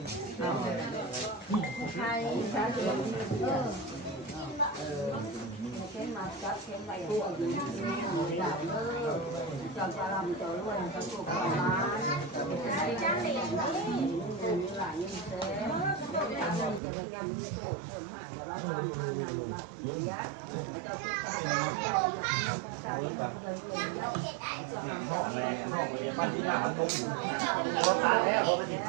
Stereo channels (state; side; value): drops out; left; at 16.8 s